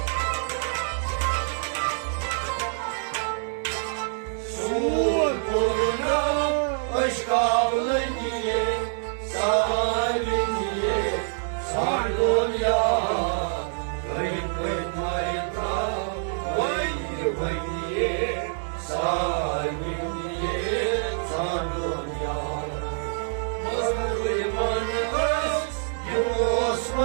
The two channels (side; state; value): left; silent; digital silence